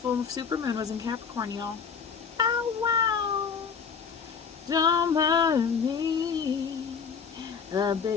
supermoon was in Capricorn, y'all. Oh, wow. Don't bother me. I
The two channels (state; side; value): quieter; right; 6.2 dB